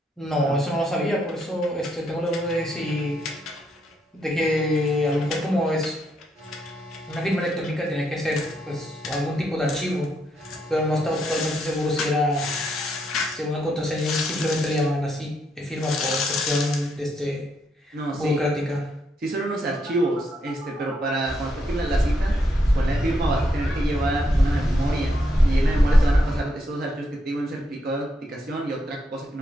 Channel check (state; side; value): normal; both; correlation 0.77